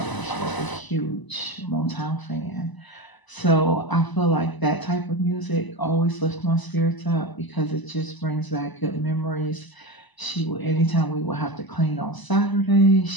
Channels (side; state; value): right; late; 1.0 ms